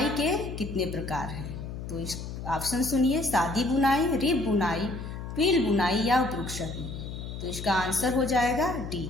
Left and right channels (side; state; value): left; noise; hum, 8 dB below the sound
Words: के कितने प्रकार हैं? तो इस ऑप्शन सुनिए, सादी बुनाई, रिब बुनाई, ट्विल बुनाई, या उपयुक्त सभी। तो इसका आंसर हो जाएगा